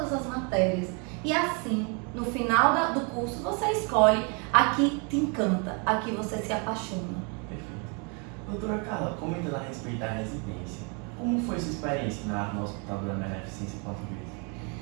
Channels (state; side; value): quieter; left; 35.0 dB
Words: as matérias e assim, no final do curso, você escolhe a que te encanta, a que você se apaixona. Perfeito. Doutora Carla, comentando a respeito da residência, como foi sua experiência no Hospital da Beneficência Portuguesa?